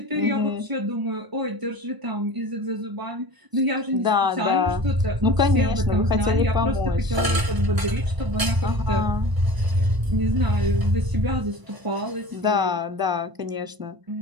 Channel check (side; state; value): left; late; 1.0 ms